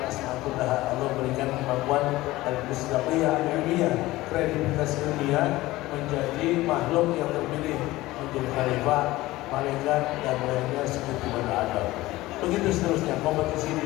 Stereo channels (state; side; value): quieter; right; 18.1 dB